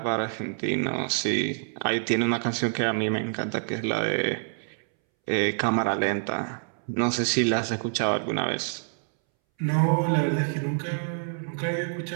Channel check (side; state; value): left; silent; 60 dB below the other